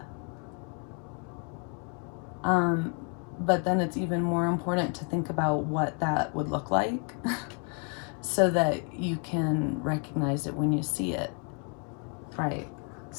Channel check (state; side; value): quieter; right; 39.1 dB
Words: But then it's even more important to think about what that would look like so that you can recognize it when you see it, right?